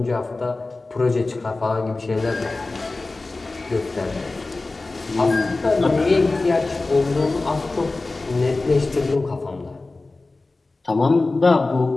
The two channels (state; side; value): quieter; right; 3.3 dB